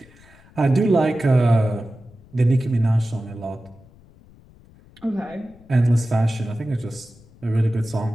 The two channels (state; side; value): noise; left; rumble, 26 dB below the sound